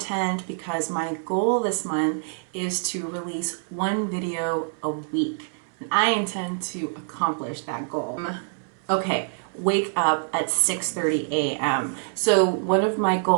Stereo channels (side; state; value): left; silent; 61 dB below the other